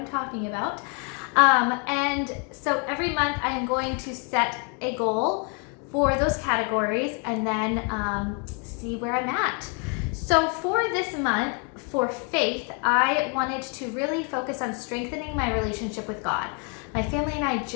talking about. And so every month I am going to set a goal for those categories and then see where I'm at. So for this month, for faith, I wanted to really focus on strengthening my relationship with God. My family and I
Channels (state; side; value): quieter; right; 36.8 dB